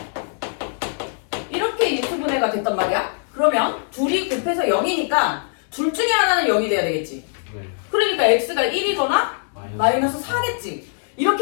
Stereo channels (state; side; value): silent; right; 64 dB below the other